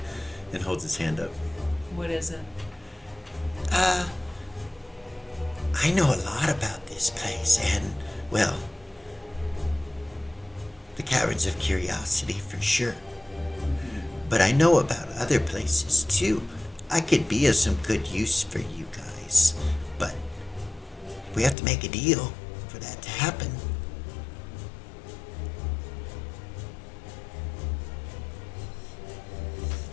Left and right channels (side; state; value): right; drops out; at 21.6 s